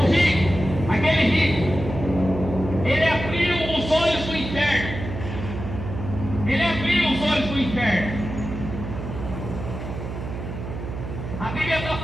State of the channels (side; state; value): right; noise; hum, 7 dB below the sound